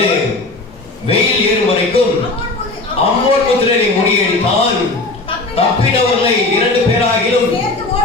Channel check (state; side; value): quieter; right; 3.2 dB